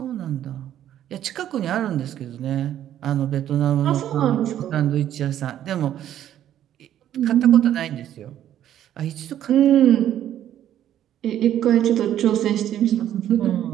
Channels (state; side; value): quieter; left; 11.3 dB